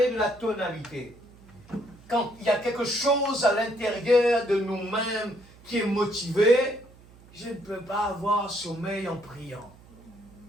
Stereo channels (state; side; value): noise; right; hum, 24 dB below the sound